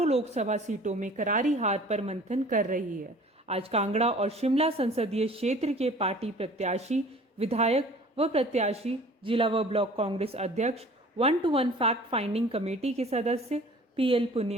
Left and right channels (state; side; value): normal; both; correlation 0.48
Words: लोकसभा सीटों में करारी हार पर मंथन कर रही है। आज कांगड़ा और शिमला संसदीय क्षेत्र के पार्टी प्रत्याशी, विधायक व प्रत्याशी, जिला व ब्लॉक कांग्रेस अध्यक्ष, 1-to-1 फैक्ट फाइंडिंग कमेटी के सदस्य PL